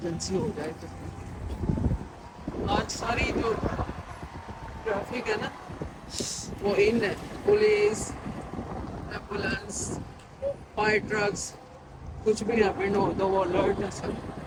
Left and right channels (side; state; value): both; identical; correlation 1.00